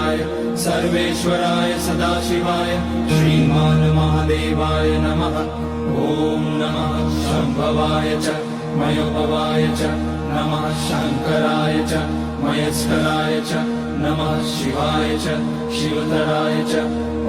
सर्वेश्वराय सदाशिवाय श्रीमान् महादेवाय नमः। ॐ नमः शम्भवाय च मयोभवाय च नमः शङ्कराय च मयस्कराय च नमः शिवाय च शिवतराय च।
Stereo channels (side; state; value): both; identical; correlation 1.00